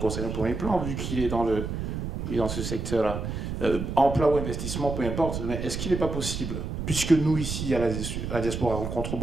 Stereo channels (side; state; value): right; noise; rumble, 4 dB below the sound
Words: au premier plan, vu qu'il est dans ce secteur-là. Emploi ou investissement, peu importe, mais est-ce qu'il n'est pas possible, puisque nous ici, à la diaspora, rencontrons